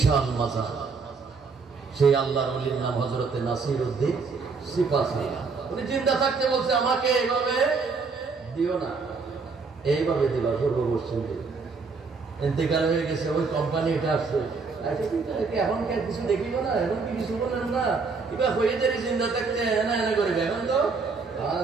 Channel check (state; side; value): quieter; left; 4.6 dB